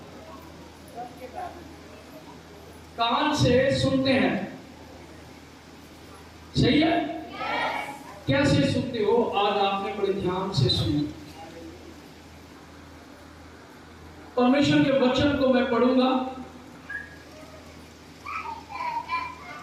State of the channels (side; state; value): both; identical; correlation 1.00